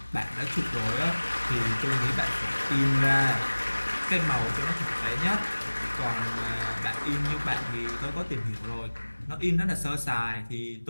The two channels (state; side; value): inverted; both; correlation -1.00